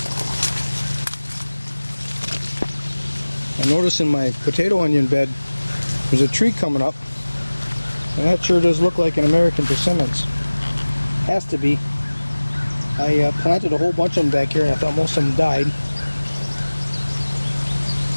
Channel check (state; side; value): inverted; both; correlation -1.00